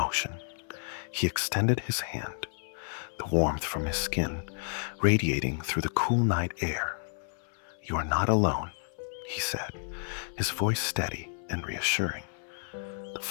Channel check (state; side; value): silent; right; 57 dB below the other